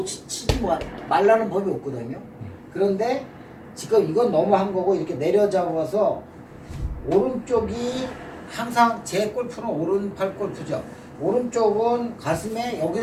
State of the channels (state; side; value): identical; both; correlation 1.00